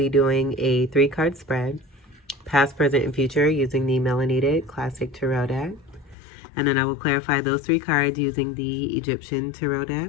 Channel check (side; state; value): right; drops out; at 6.2 s